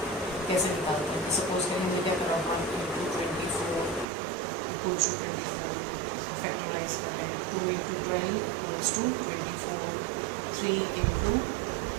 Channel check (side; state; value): left; drops out; at 4.0 s